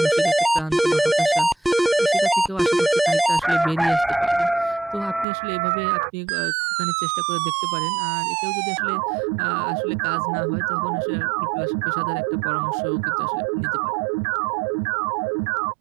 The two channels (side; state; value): left; drops out; at 5.2 s